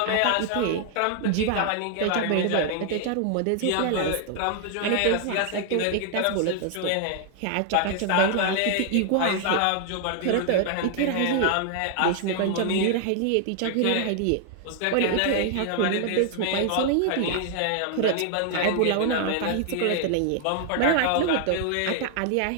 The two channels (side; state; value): both; different; correlation 0.00